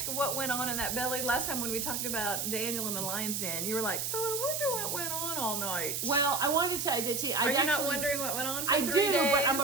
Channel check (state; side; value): noise; right; hiss, 2 dB below the sound